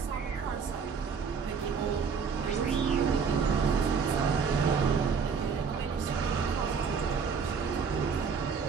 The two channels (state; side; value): quieter; left; 5.9 dB